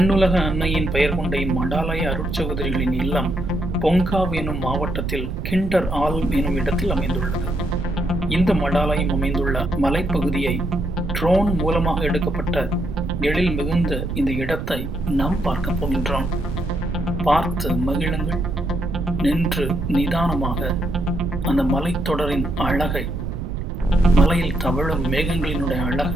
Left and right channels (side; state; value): right; noise; rumble, 6 dB below the sound